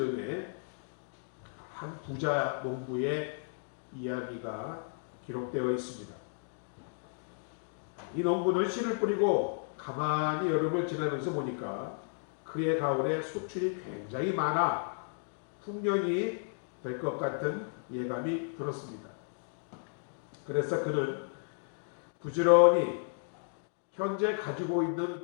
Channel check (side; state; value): right; silent; digital silence